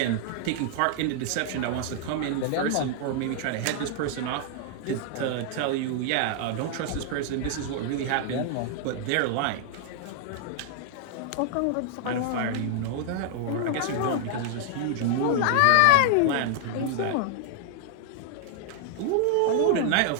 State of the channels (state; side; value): different; both; correlation 0.00